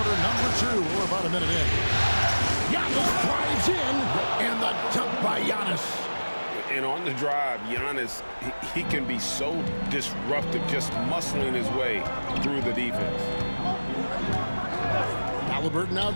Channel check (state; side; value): inverted; both; correlation -1.00